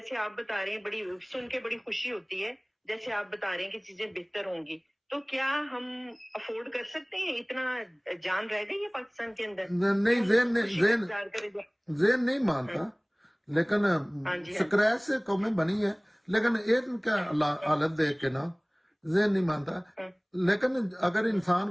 آپ بتا رہے ہیں، بڑی سن کے بڑی خوشی ہوتی ہے، جیسے آپ بتا رہے ہیں کہ چیزیں بہتر ہوں گی، تو کیا ہم افورڈ کر سکتے ہیں؟ اتنا جان رہ گئی ہے پاکستان کے اندر؟ نہیں، ذہن نہیں مانتا، لیکن سکریچ سے قومیں بنی ہے، لیکن ایک کا حالت دیکھ کے نا ذہن نہیں مانتا، لیکن اگر انسان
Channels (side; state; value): both; identical; correlation 1.00